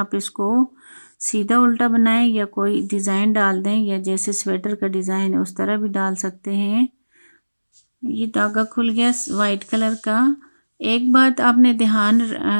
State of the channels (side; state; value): both; inverted; correlation -1.00